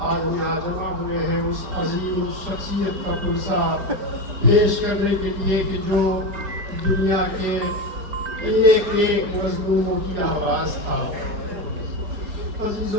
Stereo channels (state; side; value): late; left; 5.0 ms